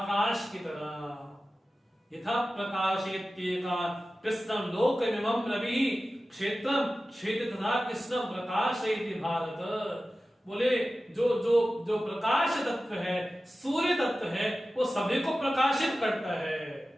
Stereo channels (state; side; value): normal; both; correlation 0.95